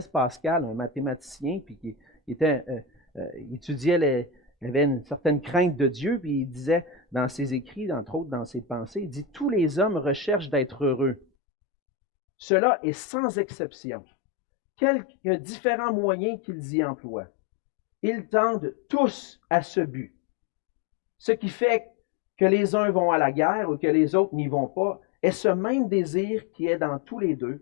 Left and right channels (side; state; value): right; drops out; at 11.2 s